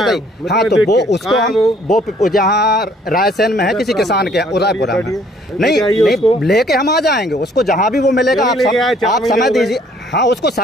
हाँ तो वो उसको हम वो जहाँ रायसेन में है किसी किसान के उदयपुरा में, नहीं लेके हम आ जाएंगे उसको, जहाँ भी वो मिलेगा। आप समय दीजिए, हाँ उसको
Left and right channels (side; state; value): both; normal; correlation 0.61